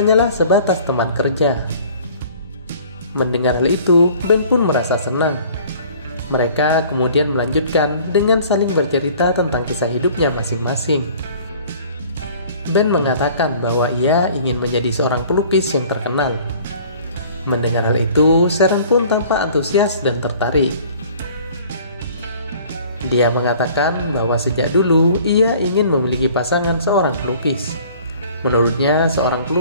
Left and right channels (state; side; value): inverted; both; correlation -0.51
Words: sebatas teman kerja. Mendengar hal itu, Ben pun merasa senang. Mereka kemudian melanjutkan dengan saling bercerita tentang kisah hidupnya masing-masing. Ben mengatakan bahwa ia ingin menjadi seorang pelukis yang terkenal. Mendengar hal itu, Sharon pun tampak antusias dan tertarik. Dia mengatakan bahwa sejak dulu ia ingin memiliki pasangan seorang pelukis. Menurutnya, seorang